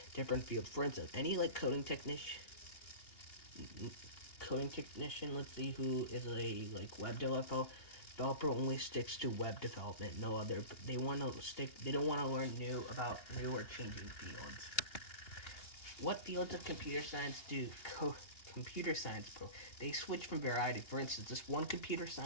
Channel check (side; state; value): right; late; 2.8 ms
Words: different fields. For instance, any like coding technician, let's see, who is a like web developer only sticks to web development. No other. They don't want to learn new or changing fields. What fields of computer science do computer science pro? They switch from variety. For instance, this one computer